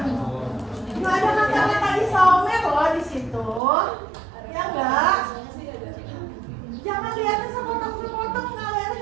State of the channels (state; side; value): drops out; left; at 3.6 s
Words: Nggak ada kata-kata isomer loh di situ, ya enggak? Jangan lihatnya sepotong-sepotong, nggak lihatnya